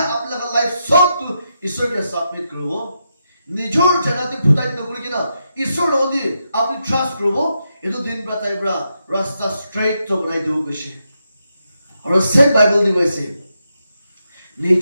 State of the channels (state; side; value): inverted; both; correlation -0.84